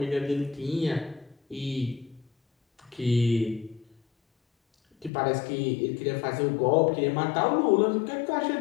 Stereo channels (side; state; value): right; drops out; at 5.1 s